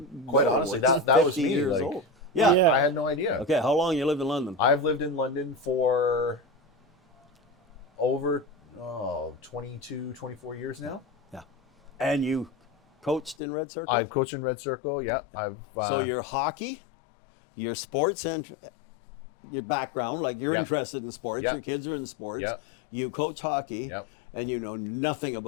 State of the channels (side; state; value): right; drops out; at 13.4 s